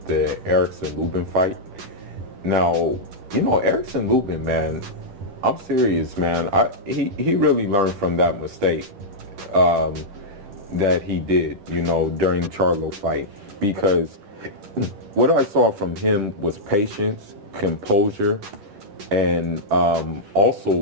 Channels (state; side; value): late; left; 10 ms